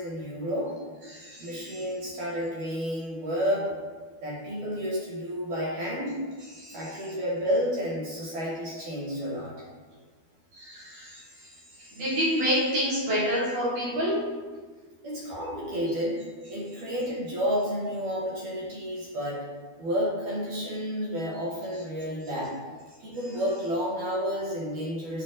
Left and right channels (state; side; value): late; left; 12 ms